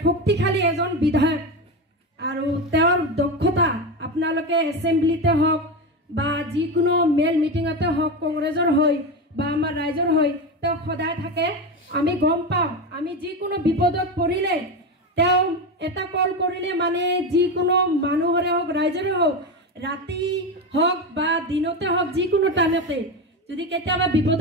শক্তিশালী এজন বিধায়ক আৰু তেওঁৰ দক্ষতা আপোনালোকে এছেম্বলিতে হওক বা যিকোনো মেল মিটিঙতে হওক, কংগ্ৰেছৰ হৈ বা আমাৰ ৰাইজৰ হৈ তেওঁ সদায় থাকে। আমি গম পাওঁ, আমি যিকোনো বিপদত পৰিলে তেওঁ এটা কল কৰিলে মানে যিকোনো মানুহৰে হওক ৰাইজৰে হওক, ৰাতি হওক বা দিনতে হওক, যিকোনো টাইমতে যদি কেতিয়াবা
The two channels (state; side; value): normal; both; correlation 0.18